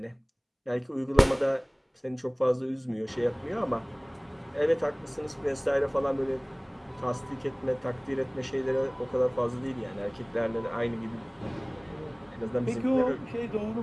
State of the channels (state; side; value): identical; both; correlation 1.00